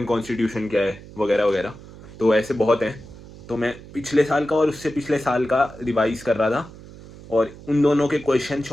कॉन्स्टिट्यूशन क्या है, वगैरह वगैरह। तो ऐसे बहुत हैं, तो मैं पिछले साल का और उससे पिछले साल का रिवाइज कर रहा था, और उन दोनों के क्वेश्चन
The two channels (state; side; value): noise; right; hum, 18 dB below the sound